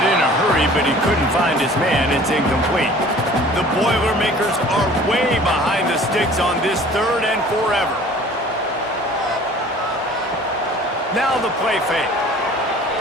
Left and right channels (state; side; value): normal; both; correlation 0.48